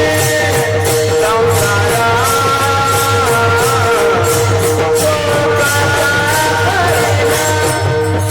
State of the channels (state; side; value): identical; both; correlation 1.00